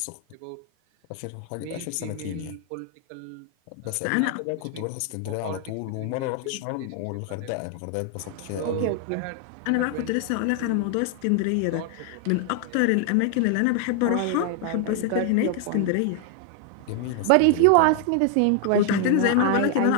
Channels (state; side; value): different; both; correlation 0.00